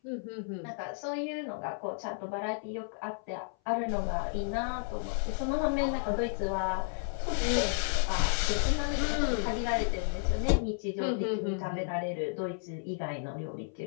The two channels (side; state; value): right; silent; 56 dB below the other